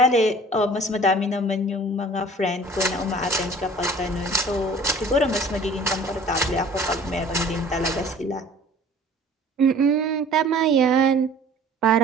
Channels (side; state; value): both; normal; correlation 0.48